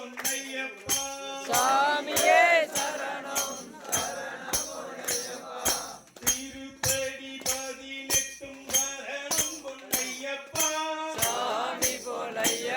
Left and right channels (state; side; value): identical; both; correlation 1.00